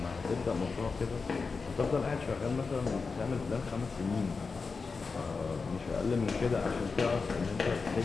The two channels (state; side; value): quieter; right; 4.6 dB